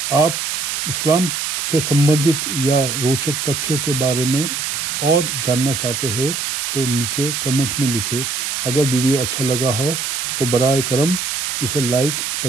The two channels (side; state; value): right; noise; hiss, 2 dB below the sound